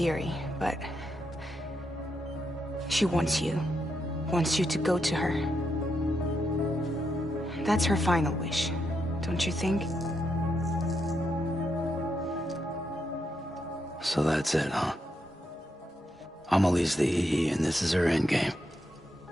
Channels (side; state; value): both; normal; correlation 0.81